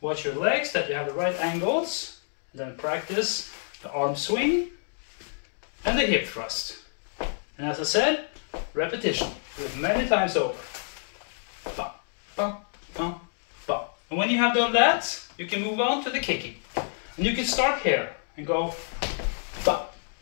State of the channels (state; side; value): silent; right; digital silence